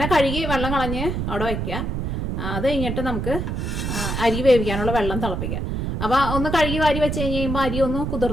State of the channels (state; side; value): noise; right; rumble, 2 dB below the sound